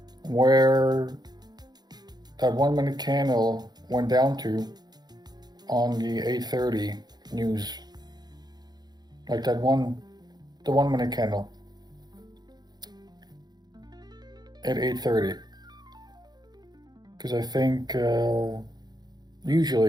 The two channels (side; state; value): left; late; 0.20 ms